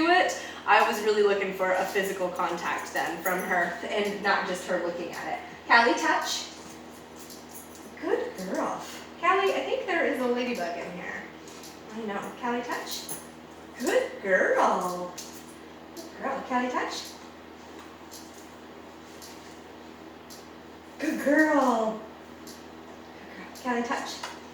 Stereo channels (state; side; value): identical; both; correlation 1.00